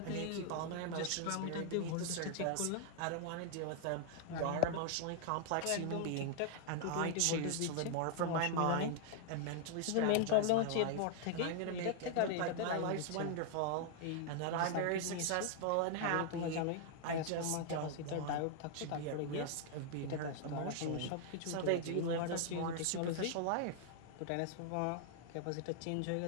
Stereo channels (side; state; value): both; different; correlation 0.00